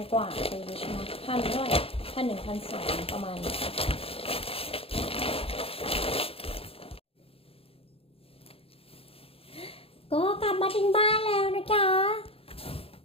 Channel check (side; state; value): right; late; 0.27 ms